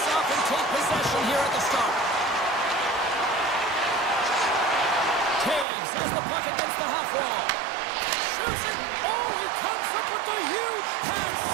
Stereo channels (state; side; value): drops out; left; at 5.7 s